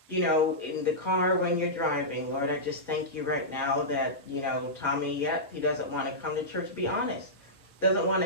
In the car when you're driving, Lord, I just thank you right now that, Tommy, yet he doesn't want to come to church. Be honest. Doesn't want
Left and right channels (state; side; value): normal; both; correlation -0.13